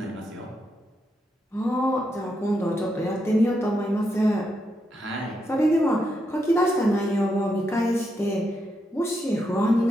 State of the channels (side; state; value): both; normal; correlation 0.82